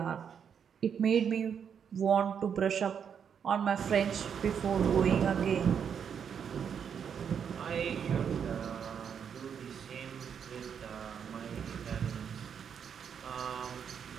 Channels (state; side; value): quieter; left; 7.6 dB